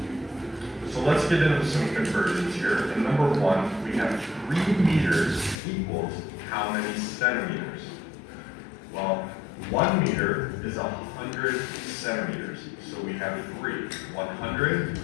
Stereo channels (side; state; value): right; drops out; at 5.6 s